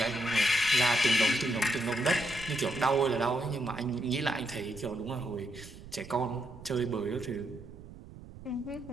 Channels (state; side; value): noise; right; rumble, 16 dB below the sound